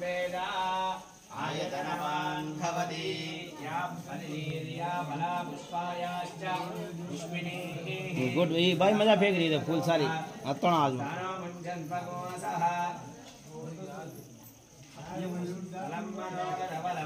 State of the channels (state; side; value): identical; both; correlation 1.00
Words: आयतनवान् भवति या फलिर्या फला पुष्पायाश्च पुष्पिनीः। गुड ये भाई मजा फेंक रही है फूल सारी अतोना आज में मुञ्जन भगवसः